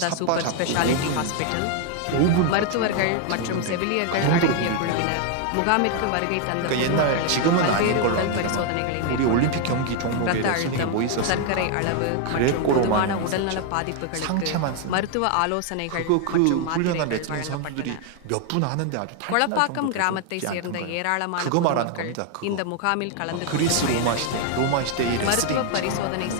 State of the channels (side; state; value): both; different; correlation 0.00